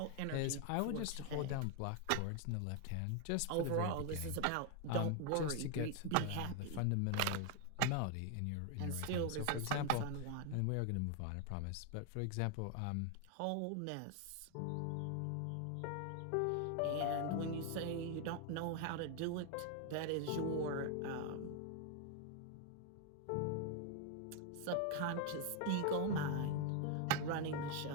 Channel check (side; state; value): both; different; correlation 0.00